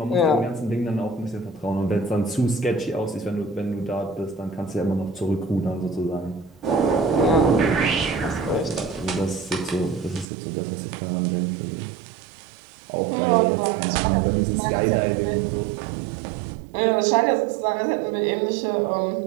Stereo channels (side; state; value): left; drops out; at 10.2 s